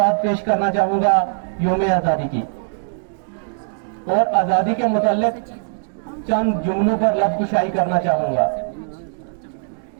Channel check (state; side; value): silent; left; digital silence